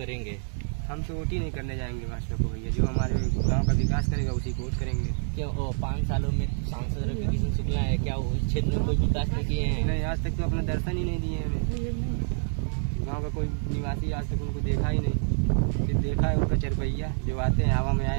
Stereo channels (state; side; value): silent; left; 60 dB below the other